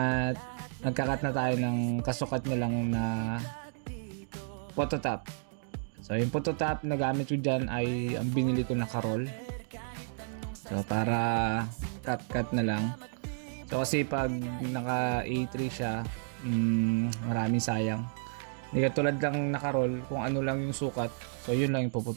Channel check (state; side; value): silent; left; digital silence